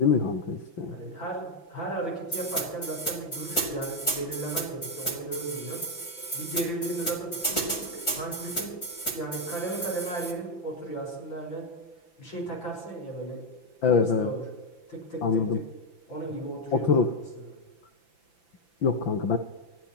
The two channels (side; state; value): right; late; 5.9 ms